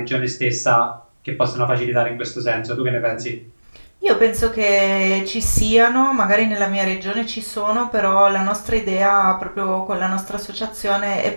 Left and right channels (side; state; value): both; inverted; correlation -1.00